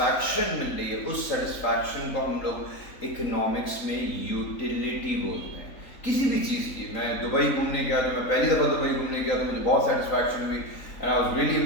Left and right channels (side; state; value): right; late; 3.8 ms